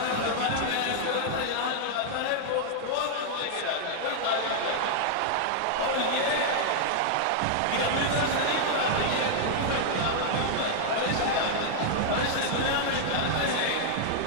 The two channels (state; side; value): different; both; correlation -0.01